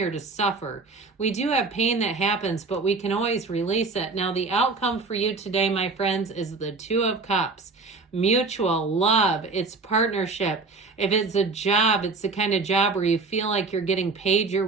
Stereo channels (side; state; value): left; quieter; 4.0 dB